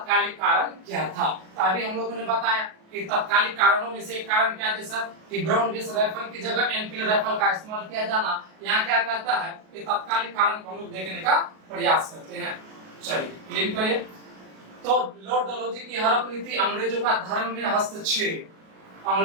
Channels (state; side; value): late; left; 37 ms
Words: कारण क्या था? तो अभी हम लोगों ने बताया कि तात्कालिक कारणों में से एक कारण क्या थे सर? कि ब्राउन बेस राइफल की जगह एनफील्ड राइफल का इस्तेमाल किया जाना। यहाँ क्या कहता है कि तात्कालिक कारण को हम लोग देखने का प्रयास करते हैं। चलिए क्लियर करिए। तो लॉर्ड डलहौजी की हड़प नीति, अंग्रेजों का धर्म में हस्तक्षेप,